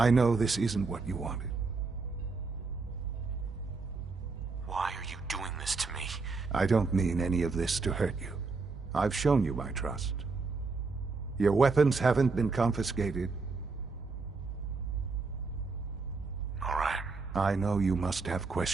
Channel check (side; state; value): left; quieter; 4.2 dB